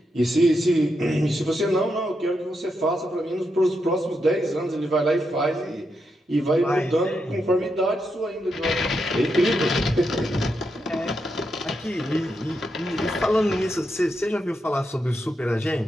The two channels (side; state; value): both; normal; correlation 0.83